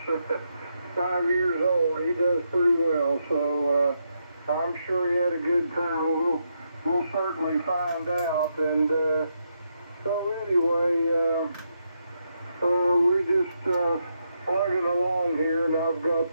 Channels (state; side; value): inverted; both; correlation -0.81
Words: 5 years old, he does pretty well. So I'm sure he had a good time. We'll certainly find out. And so anyway, we just plugging along here, and I've got